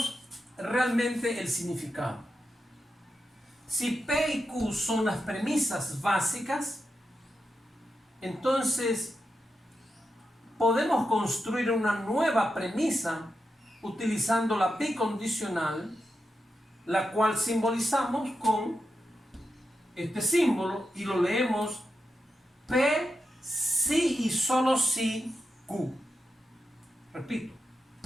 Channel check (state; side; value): normal; both; correlation 0.88